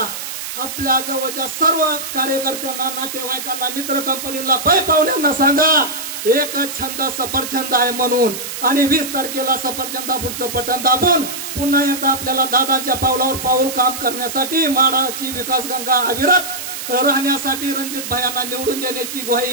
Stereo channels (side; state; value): right; noise; hiss, 7 dB below the sound